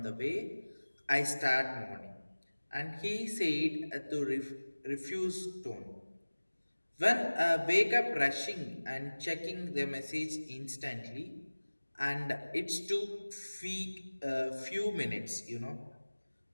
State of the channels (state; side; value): inverted; both; correlation -1.00